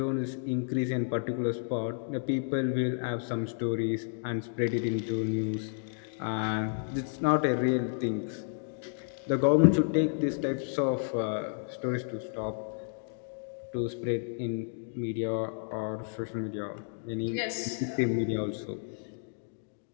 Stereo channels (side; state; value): right; silent; digital silence